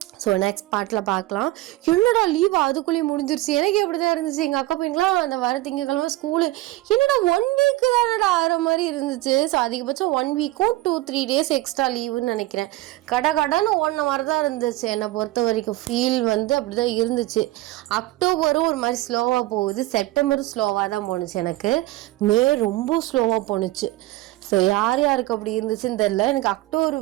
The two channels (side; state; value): left; quieter; 17.7 dB